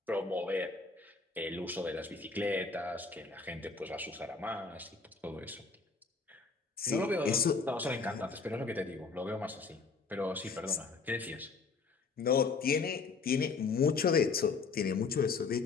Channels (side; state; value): right; quieter; 4.6 dB